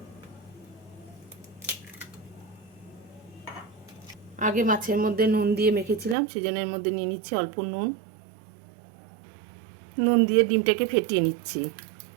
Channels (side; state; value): left; drops out; at 6.2 s